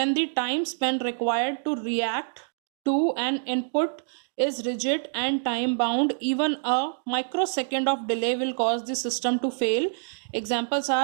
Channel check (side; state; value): left; silent; digital silence